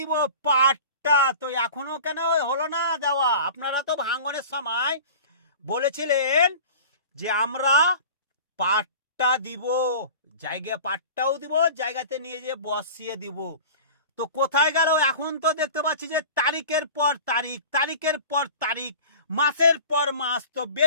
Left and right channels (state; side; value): inverted; both; correlation -0.39